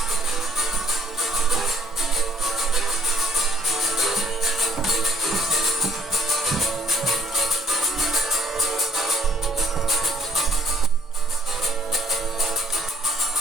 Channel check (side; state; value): both; normal; correlation 0.62